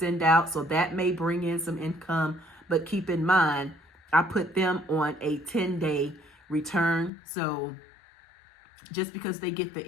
out, so that may bring in some income. But keep in mind, I put them on a 10-day return. So just because they get the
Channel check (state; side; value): drops out; right; at 7.1 s